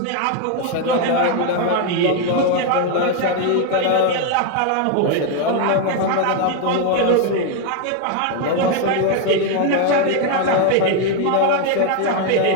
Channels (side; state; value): both; different; correlation 0.01